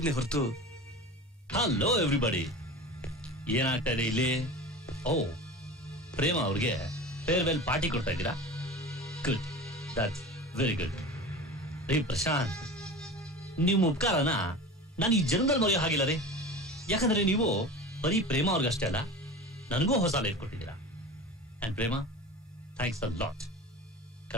ಹೊರತು. ಹಲೋ ಎವ್ರಿಬಡಿ, ಏನಾಗ್ತಾ ಇದೆ ಇಲ್ಲಿ? ಓ, ಪ್ರೇಮ ಅವ್ರಿಗೆ ಫೇರ್ವೆಲ್ ಪಾರ್ಟಿ ಕೊಡ್ತಾ ಇದ್ದೀರಾ? Good, that's very good. ರೀ ಪ್ರಶಾಂತ್, ನಿಮ್ಮ ಉಪಕಾರನ ನಾನು ಈ ಜನ್ಮದಲ್ಲಿ ಮರೆಯೋ ಹಾಗಿಲ್ಲ ರೀ. ಯಾಕಂದ್ರೆ ನೀವು ಬರೀ ಪ್ರೇಮ ಅವ್ರಿಗಷ್ಟೇ ಅಲ್ಲ, ನನಗೂ ಹೊಸ ಲೈಫ್ ಕೊಟ್ಟಿದ್ದೀರಾ. And Prema, thanks a lot.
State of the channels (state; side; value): normal; both; correlation 0.33